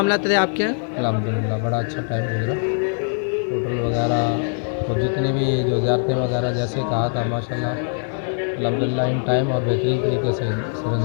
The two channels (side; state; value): right; silent; digital silence